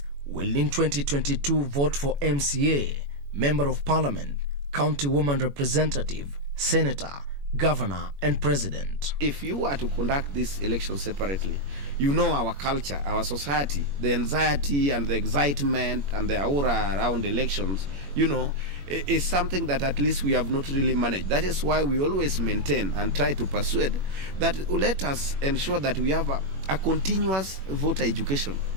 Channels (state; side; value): late; left; 21 ms